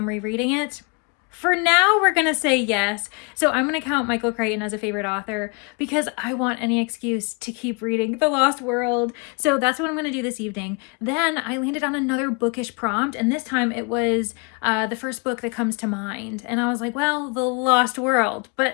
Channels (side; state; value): right; quieter; 32.3 dB